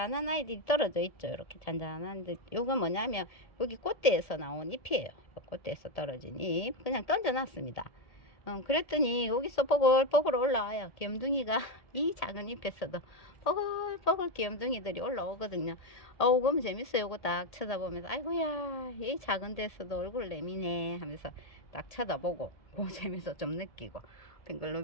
아이들이 떨어져 있죠. 이렇게 잔잔한데, 요건 뭐냐면 여기 꽃대에서 나온 잎이에요. 꽃대에서 떨어진 잎 그냥 던져놨습니다. 그랬더니 여기서 뽀글뽀글 올라와요. 귀염둥이가 이 작은 잎에서도 뽀글뽀글 귀염둥이들이 올라오거든요. 그럼 재밌어요. 이거 딱 쳐다보면서 아이고야, 이 작은 데서도 얼굴 내미네 하면서 딱 쳐다보고 그 재미도 좀 느끼고,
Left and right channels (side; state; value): right; late; 1.8 ms